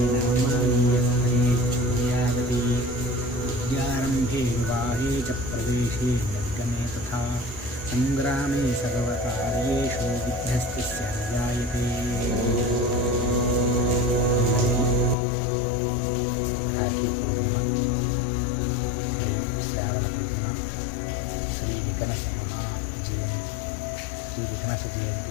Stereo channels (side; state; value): right; drops out; at 15.2 s